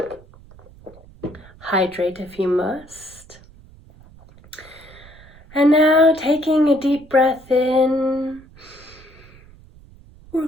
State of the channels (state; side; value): noise; right; rumble, 23 dB below the sound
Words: Hydrate if you must. And now, taking a deep breath in, we're